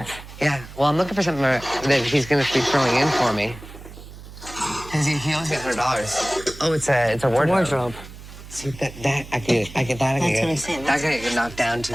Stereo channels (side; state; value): right; noise; hum, 16 dB below the sound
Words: Yeah, well, I'm looking for something that he's going to be throwing in for me. Because he owes me $100. Oh, it's a wardrobe. See, that I can get that. That's what I'm saying. That can get knocked down to